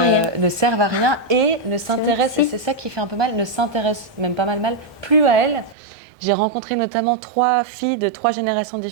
servent à rien et ne s'intéressent, et c'est ça qui fait un peu mal, ne s'intéressent même pas mal, plus à elles. J'ai rencontré notamment 3 filles de 3 générations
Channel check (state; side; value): drops out; left; at 5.8 s